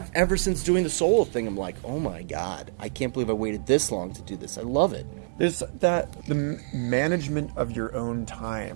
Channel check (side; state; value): left; silent; digital silence